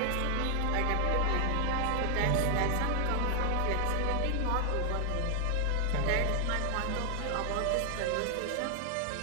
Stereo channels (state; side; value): different; both; correlation 0.00